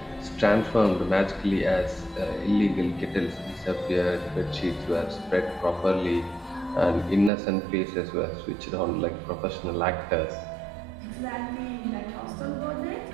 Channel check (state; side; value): drops out; left; at 7.3 s